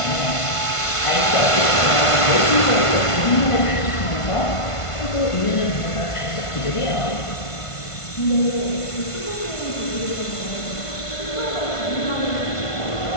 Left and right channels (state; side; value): late; right; 1.5 ms